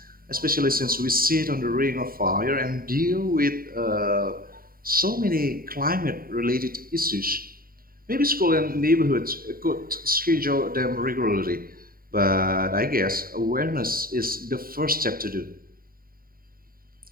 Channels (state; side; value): late; left; 0.42 ms